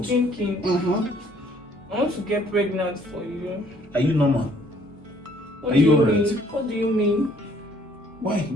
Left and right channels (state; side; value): normal; both; correlation 0.61